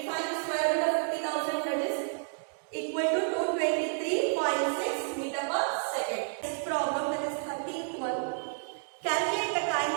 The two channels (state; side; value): silent; left; digital silence